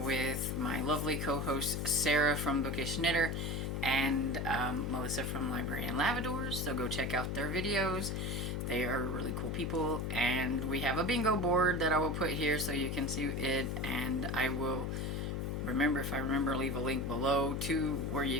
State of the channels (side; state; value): left; noise; hum, 1 dB below the sound